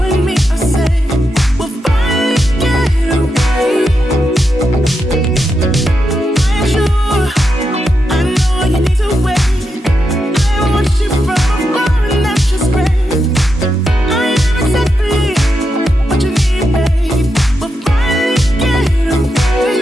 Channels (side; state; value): both; normal; correlation 0.85